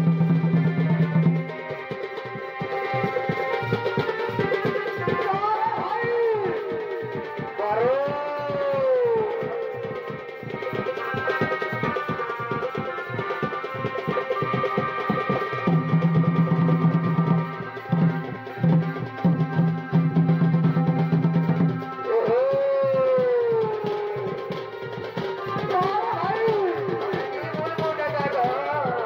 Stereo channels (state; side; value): identical; both; correlation 1.00